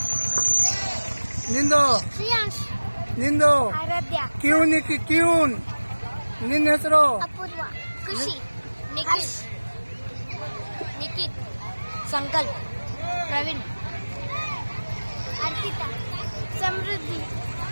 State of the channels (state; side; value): inverted; both; correlation -1.00